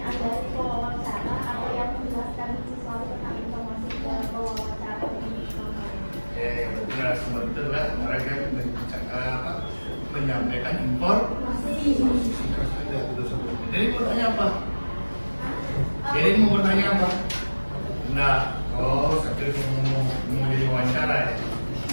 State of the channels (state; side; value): inverted; both; correlation -1.00